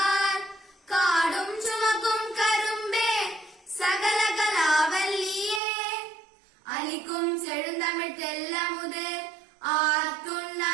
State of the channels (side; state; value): left; drops out; at 5.6 s